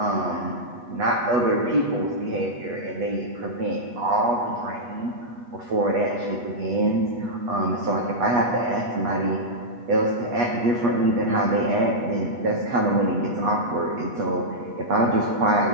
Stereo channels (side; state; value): left; late; 8.3 ms